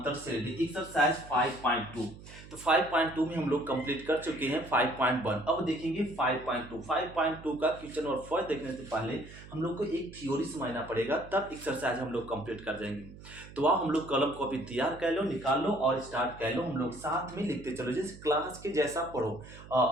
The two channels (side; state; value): right; noise; hum, 17 dB below the sound